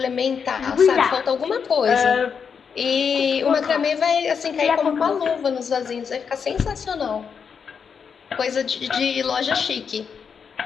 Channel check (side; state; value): right; quieter; 6.5 dB